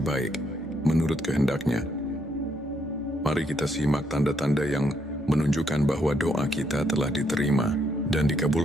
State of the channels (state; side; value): normal; both; correlation 0.74